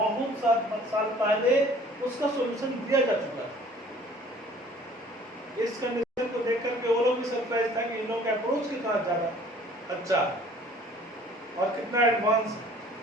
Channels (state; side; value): normal; both; correlation 0.52